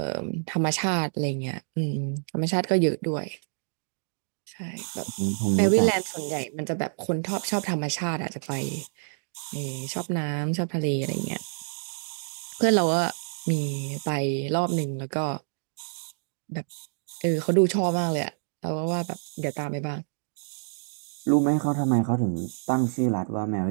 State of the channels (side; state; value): left; silent; digital silence